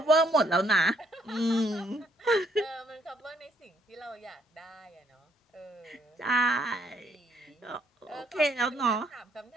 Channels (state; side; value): normal; both; correlation 0.69